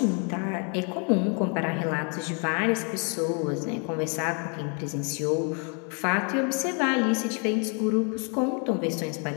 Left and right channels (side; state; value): right; quieter; 37.4 dB